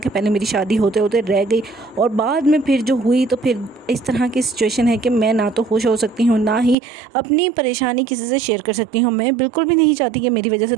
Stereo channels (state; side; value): drops out; left; at 6.8 s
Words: पहले मेरी शादी होते होते रह गई और बाद में फिर जो हुई तो फिर इस तरह की सिचुएशन है कि मैं ना तो खुश हो सकती हूँ ना ही अपनी परेशानी किसी से शेयर कर सकती हूँ। मैं बिल्कुल भी नहीं चाहती कि मेरी वजह से